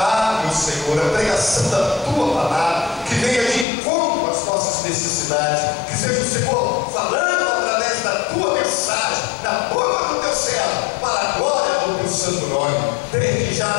meu Senhor, a pregação da Tua palavra, que venha de encontro às nossas necessidades, que seja o Senhor falando através da Tua mensagem, na boca do Teu servo, para a glória do Teu santo nome. Desde já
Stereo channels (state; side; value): drops out; right; at 3.7 s